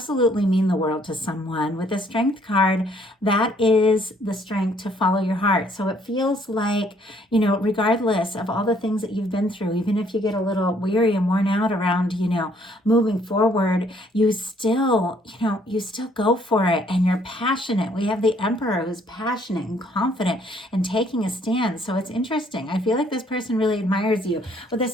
mean the world to someone. With the Strength card, that is the strength to follow your heart. So it feels like, regardless of all the things that you've been through, even if you get a little weary and worn out around, moving forward, you still go for it and you're passionate. We have the Emperor who's passionate and confident and taking a stand. So it's interesting. I feel like this person really admires you. With the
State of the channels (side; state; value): both; normal; correlation 0.64